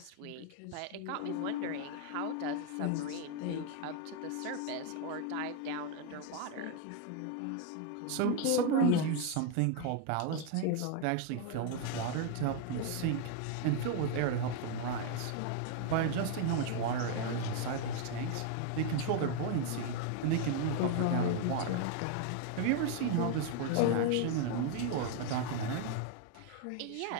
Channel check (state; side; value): different; both; correlation 0.01